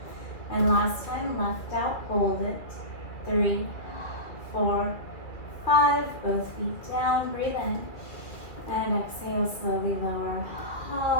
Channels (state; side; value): late; right; 2.4 ms